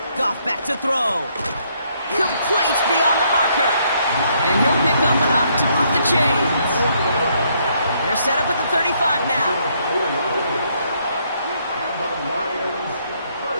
Goff back to throw. Complete beyond the marker. And he'll pick up enough to move the chains. They're set up at the 35 now.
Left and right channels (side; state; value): both; inverted; correlation -0.71